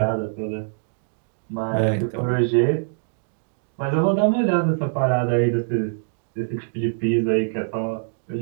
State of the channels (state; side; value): silent; left; digital silence